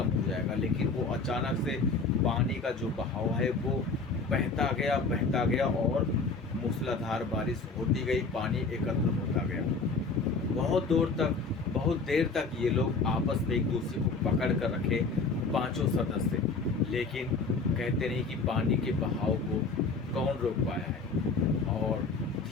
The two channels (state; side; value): quieter; right; 4.2 dB